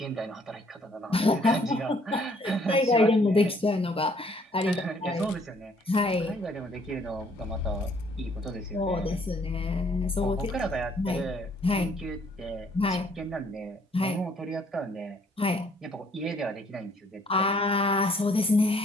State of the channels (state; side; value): normal; both; correlation 0.63